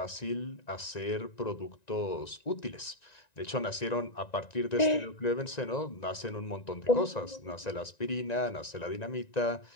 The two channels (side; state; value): right; late; 1.9 ms